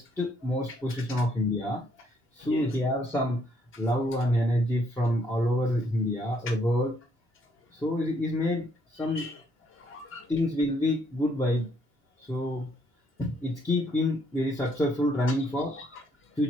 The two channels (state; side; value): normal; both; correlation 0.70